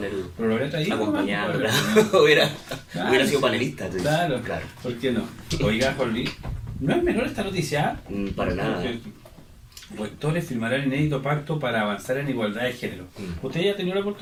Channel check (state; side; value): identical; both; correlation 1.00